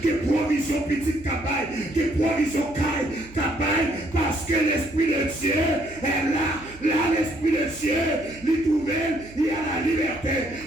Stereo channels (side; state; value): right; noise; hum, 20 dB below the sound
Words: qui est provision petite cabaye, qui est provision cabaye, parce que l'Esprit de Dieu est là. Là, l'Esprit de Dieu, il trouve, il y a la liberté,